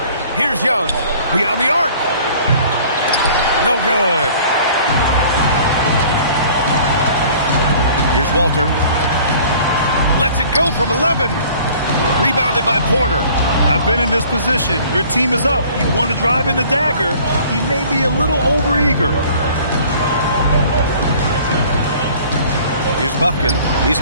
Here's Young. Beyond the arc. No good. Here's Walter. Lets it go from 11. Rebounded by Porter. I've been in this position. Your team is up. You want to drive in the dagger. He may be a little overeager. Here's Bufkin. He's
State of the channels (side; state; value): both; inverted; correlation -0.51